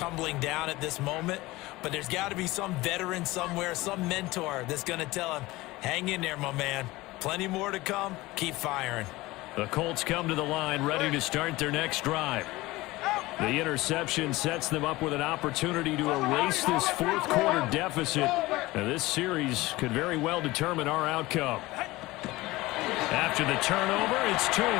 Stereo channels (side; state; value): right; quieter; 19.7 dB